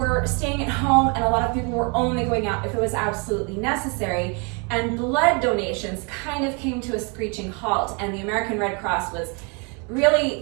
staying at home, and a lot of people were only going out if it was absolutely necessary. And blood donations kind of came to a screeching halt, and the American Red Cross was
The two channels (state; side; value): quieter; left; 33.1 dB